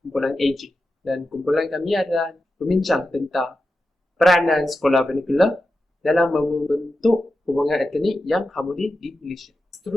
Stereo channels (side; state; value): both; normal; correlation 0.91